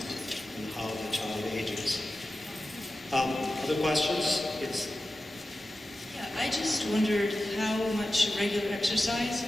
and how the child ages. Other questions? Yes. Yeah, I just wondered how much regular exercise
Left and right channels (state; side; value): normal; both; correlation 0.93